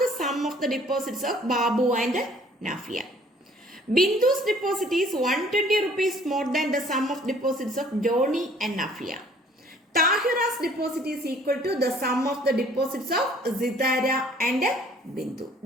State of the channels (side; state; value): both; normal; correlation 0.56